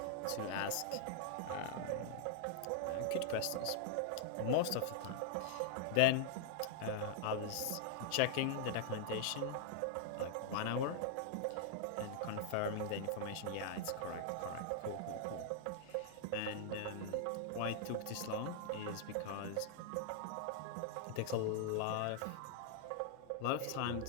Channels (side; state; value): both; different; correlation -0.01